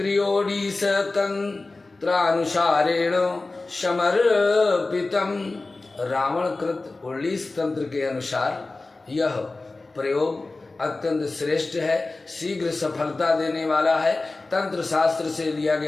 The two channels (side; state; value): right; quieter; 3.3 dB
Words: तंत्रानुसारेण समर्पितम्। रावण कृत 19 तंत्र के अनुसार यह प्रयोग अत्यंत श्रेष्ठ है, शीघ्र सफलता देने वाला है, तंत्र शास्त्र से लिया